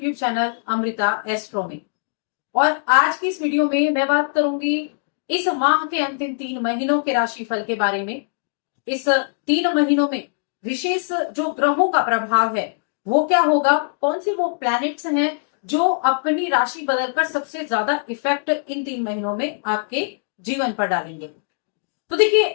चैनल अमृता एस्ट्रो में। और आज की इस वीडियो में मैं बात करूंगी इस माह के अंतिम 3 महीनों के राशिफल के बारे में। इस 3 महीनों में विशेष जो ग्रहों का प्रभाव है वो क्या होगा, कौन से वो प्लैनेट्स हैं जो अपनी राशि बदलकर सबसे ज्यादा इफेक्ट इन 3 महीनों में आपके जीवन पर डालेंगे। तो देखिए,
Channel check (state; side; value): silent; right; digital silence